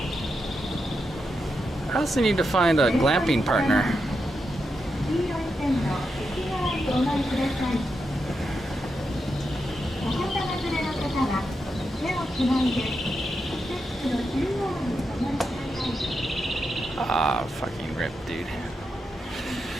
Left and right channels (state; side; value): normal; both; correlation 0.86